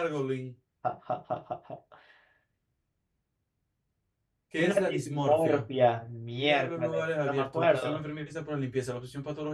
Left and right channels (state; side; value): identical; both; correlation 1.00